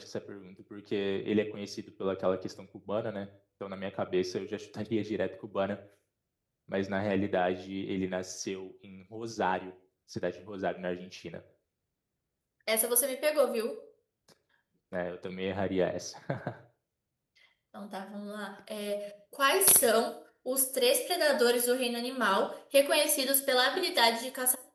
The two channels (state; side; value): identical; both; correlation 1.00